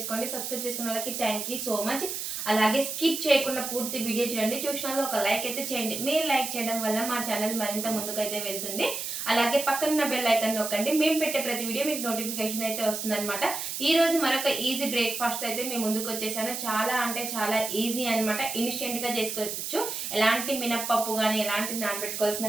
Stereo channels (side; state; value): right; noise; hiss, 4 dB below the sound